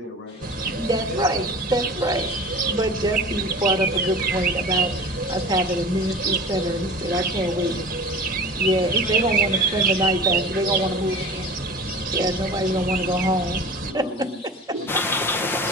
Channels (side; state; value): both; normal; correlation 0.38